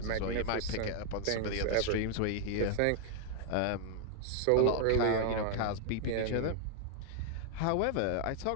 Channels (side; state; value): both; different; correlation -0.01